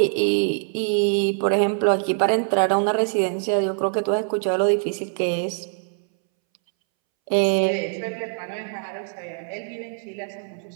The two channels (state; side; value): silent; left; 63 dB below the other